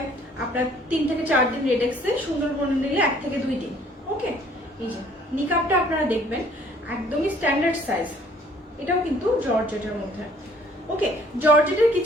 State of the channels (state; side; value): normal; both; correlation 0.58